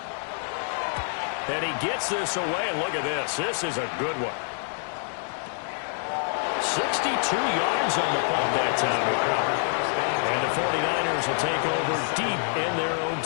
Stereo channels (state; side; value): silent; right; 60 dB below the other